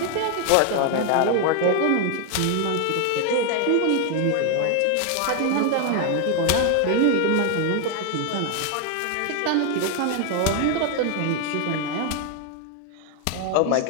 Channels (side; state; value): both; different; correlation 0.00